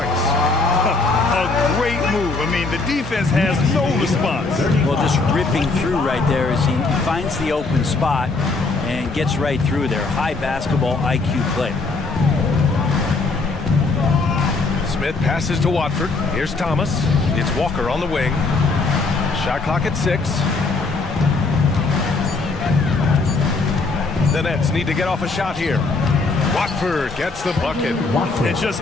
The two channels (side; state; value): right; quieter; 3.7 dB